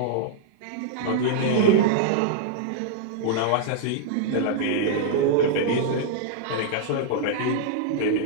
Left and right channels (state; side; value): different; both; correlation -0.02